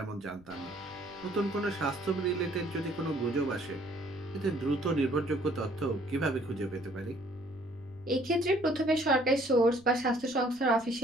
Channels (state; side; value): noise; left; rumble, 25 dB below the sound